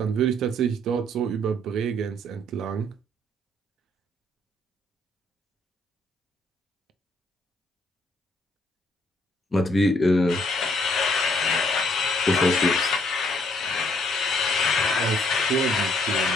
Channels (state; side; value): normal; both; correlation 0.67